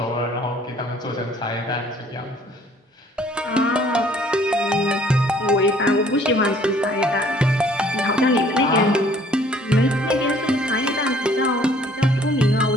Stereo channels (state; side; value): normal; both; correlation 0.58